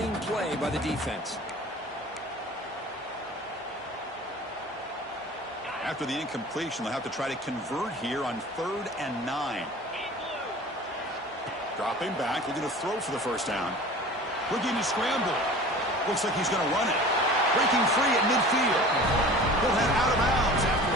play by the defense. After the incompletion, they'll have to try to convert here on 3rd and 9. Dropping back, looking to throw for the 1st down. Looking to scramble. Looks like he's going to run it. Breaking free at midfield. He'll head out of bounds after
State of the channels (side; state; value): both; normal; correlation 0.41